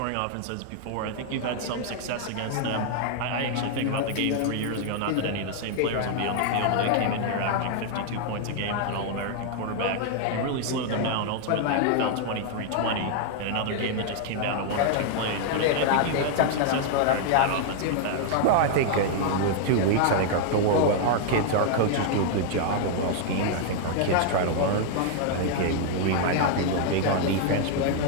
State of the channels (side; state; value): both; different; correlation 0.00